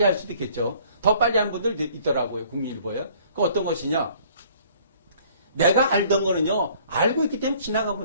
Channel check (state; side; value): inverted; both; correlation -0.56